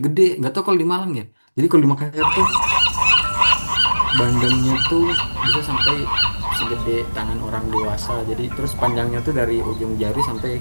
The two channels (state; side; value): inverted; both; correlation -1.00